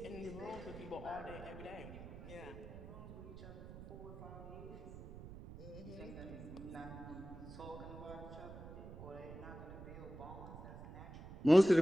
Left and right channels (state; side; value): noise; right; rumble, 12 dB below the sound